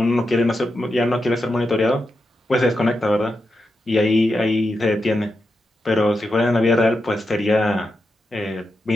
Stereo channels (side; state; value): both; normal; correlation 0.87